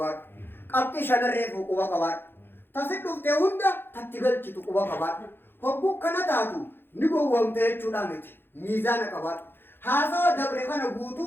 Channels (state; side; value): late; right; 0.10 ms